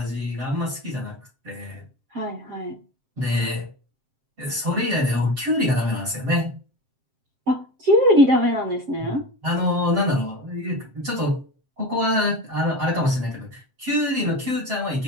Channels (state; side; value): late; left; 7.6 ms